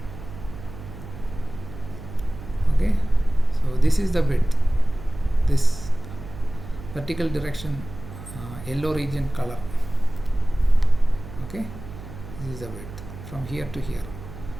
Okay. So this is the width. This vertical direction, yellow region color. Okay. This is the width from here to here.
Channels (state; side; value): noise; right; hum, 13 dB below the sound